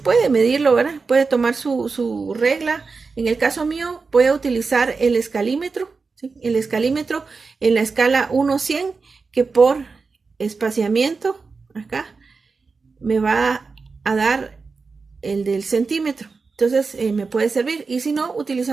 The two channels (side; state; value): left; quieter; 4.5 dB